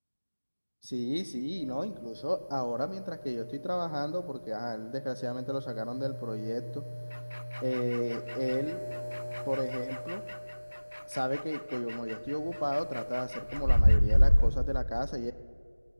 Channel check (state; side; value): inverted; both; correlation -1.00